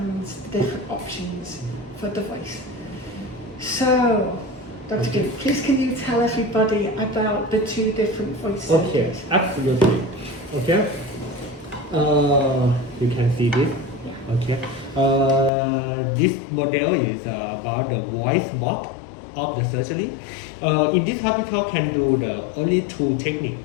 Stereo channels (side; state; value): right; drops out; at 15.5 s